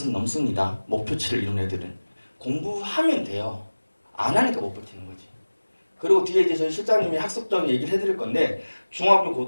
넘습니다. 목표치를 이룬 애들은. 공부하면 돼요. 안 하니까 못 버티는 거지. 그리고 뒤에 이제 저희 실장님이 학습적인 얘기를 해드릴 건데 중학교,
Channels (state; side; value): inverted; both; correlation -1.00